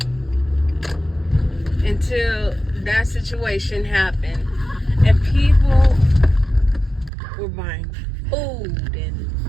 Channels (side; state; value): left; drops out; at 7.1 s